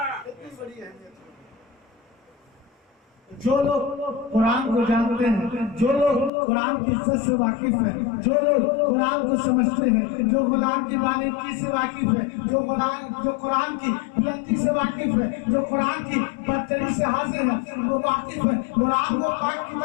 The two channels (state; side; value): drops out; right; at 6.3 s